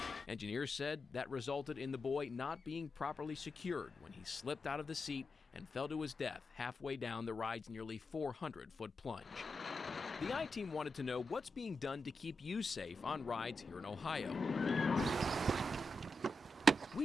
Engineers said that resulted in the boy not being properly secured when he slipped out of the seat and fell to his death halfway down the ride's nearly 400-foot plunge. The I-Team wanted to know what's being done to keep you safe on rides here in Ohio.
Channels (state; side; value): normal; both; correlation 0.87